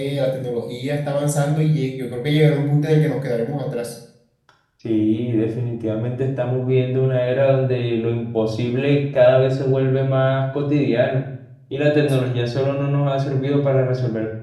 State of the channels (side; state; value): both; identical; correlation 1.00